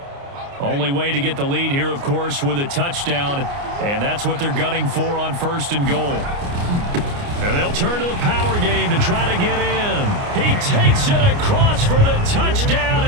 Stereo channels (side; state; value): left; late; 29 ms